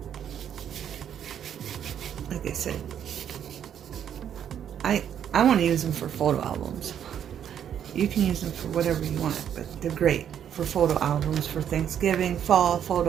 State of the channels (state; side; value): quieter; left; 9.3 dB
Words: I said, I want to use them for photo albums. You can use them for whatever you want, but they're great for photo albums, for Thanksgiving, fall